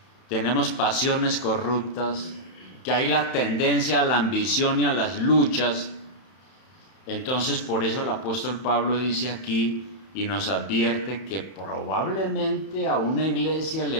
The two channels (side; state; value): right; late; 31 ms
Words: tenemos pasiones corruptas, que hay la tendencia a la ambición y a las luchas. Entonces, por eso el apóstol Pablo dice aquí y nos advierte que probablemente a una iglesia